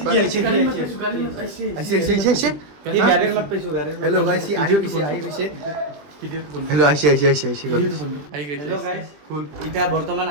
আহিছে এই গাড়ীৰ মাত পাইছো হেল্ল' গাইস আহি গৈছে হেল্ল' আহিছে হেল্ল' গাইস এতিয়া বৰ্তমান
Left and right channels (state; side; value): late; left; 20 ms